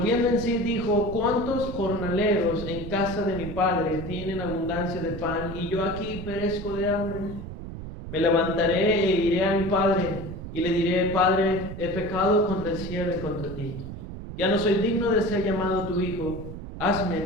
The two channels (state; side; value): noise; right; rumble, 9 dB below the sound